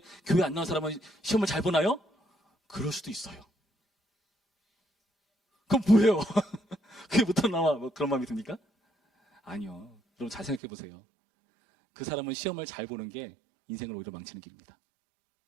교회 안 나온 사람은 시험을 잘 보나요? 그럴 수도 있어요. 그럼 뭐예요? 그게 못한 나와 뭐 그런 마음이 듭니까? 아니요. 여러분 잘 생각해 보세요. 그 사람은 시험을 잘 보는 게 인생을 오히려 망치는 길입니다.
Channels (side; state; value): left; drops out; at 10.6 s